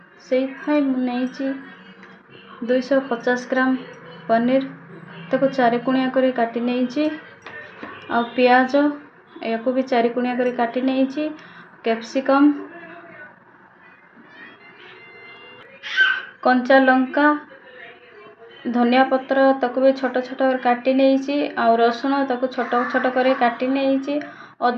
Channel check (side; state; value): both; identical; correlation 1.00